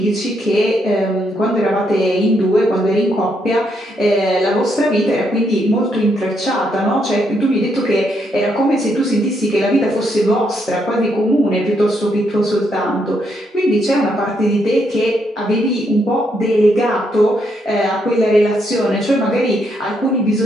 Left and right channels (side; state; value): both; normal; correlation 0.76